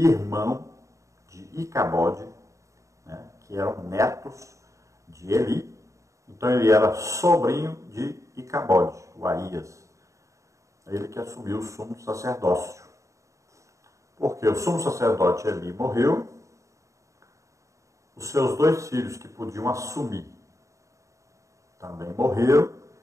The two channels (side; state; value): left; late; 0.15 ms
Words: de Icabode, né, que eram netos de Eli. Então ele era sobrinho de Icabode, o Aías. Ele que assumiu o sumo sacerdócio. Porque o sumo sacerdote Eli morreu, os seus dois filhos que podiam assumir também morreram.